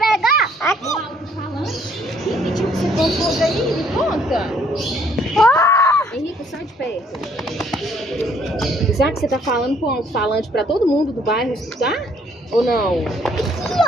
Aqui. O alto-falante? Que pediu que você colocou aí? Me conta. Henrique, sai de perto. Será que você tá falando com o alto-falante pra todo mundo do bairro escutar? Ou não? Aqui,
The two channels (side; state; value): both; normal; correlation 0.64